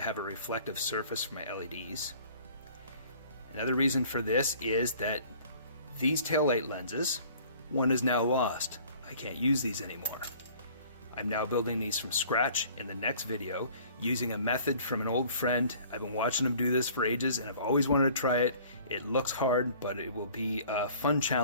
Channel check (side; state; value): both; inverted; correlation -0.51